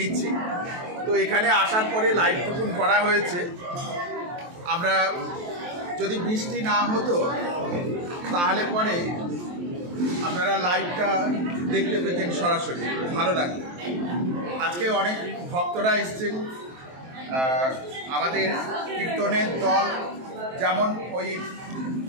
তো এখানে আসার পরে লাইভটুকুন করা হয়েছে। আমরা যদি বৃষ্টি না হতো তাহলে পরে আপনারা লাইভটা দেখতে পেতেন সরাসরি, ভালো লাগতো। আজকে অনেক ভক্তরা এসছেন, আমাদের কীর্তনের দল যেমন ওই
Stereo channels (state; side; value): late; left; 23 ms